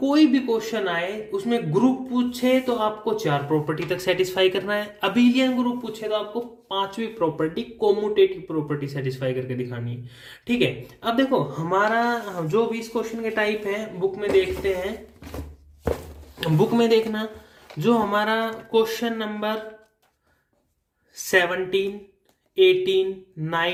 कोई भी क्वेश्चन आए उसमें ग्रुप पूछे तो आपको 4 प्रॉपर्टी तक सेटिस्फाई करना है, अबेलियन ग्रुप पूछे तो आपको 5वीं प्रॉपर्टी कोम्यूटेटिव प्रॉपर्टी सेटिस्फाई करके दिखानी है, ठीक है। अब देखो हमारा जो भी इस क्वेश्चन के टाइप है बुक में देखते हैं, बुक में देखना जो हमारा क्वेश्चन नंबर 17, 18,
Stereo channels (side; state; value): both; identical; correlation 1.00